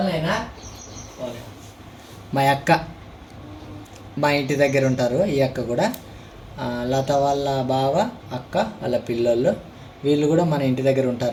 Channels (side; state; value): both; identical; correlation 1.00